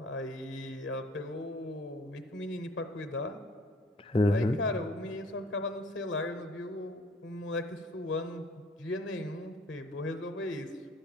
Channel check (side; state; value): both; normal; correlation 0.55